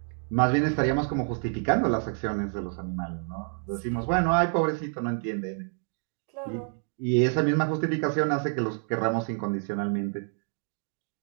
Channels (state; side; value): silent; left; 57 dB below the other